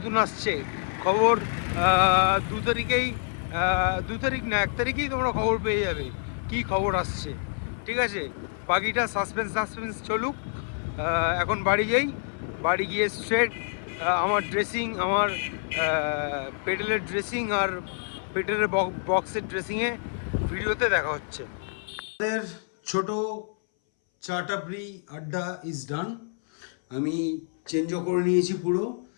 আসছে। খবর 2 তারিখেই, 2 তারিখ না 1 তারিখেই তোমরা খবর পেয়ে যাবে কি খবর আসছে, ঠিক আছে? বাকিটা সাসপেন্স চলুক। এখন বাড়ি যাই, বাড়ি গিয়ে স্ট্রেট আমার ড্রেসিং, আমার পেডেলের ড্রেসিং আর পেডেলের বক্সের ড্রেসিংয়ে ভিডিওতে দেখা হচ্ছে। আমাদের ছোট চা টাপড়ি আড্ডা ইজ ডান। আমি চেঞ্জও করে নিয়েছি, পুরো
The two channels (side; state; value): right; silent; 60 dB below the other